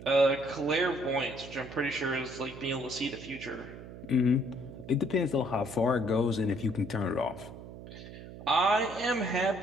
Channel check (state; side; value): noise; right; hum, 14 dB below the sound